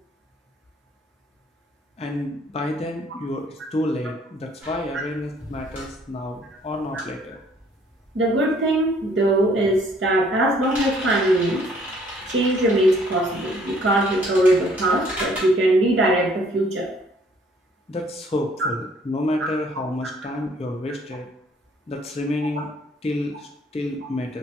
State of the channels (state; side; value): normal; both; correlation 0.61